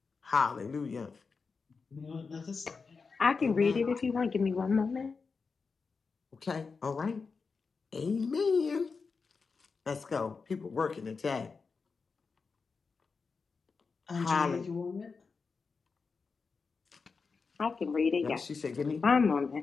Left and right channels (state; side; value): quieter; right; 4.8 dB